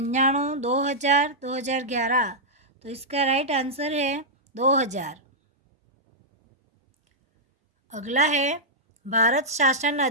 2000, 2011। तो इसका राइट आंसर है 2000। अगला है भारत शासन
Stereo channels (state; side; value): normal; both; correlation -0.09